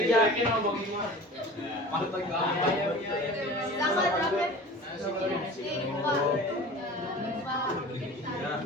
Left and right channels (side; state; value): both; normal; correlation 0.39